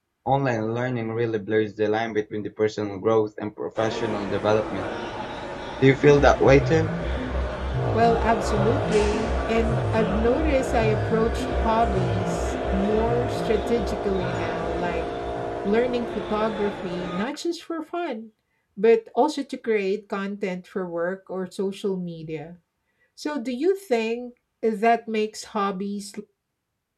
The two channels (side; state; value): both; identical; correlation 1.00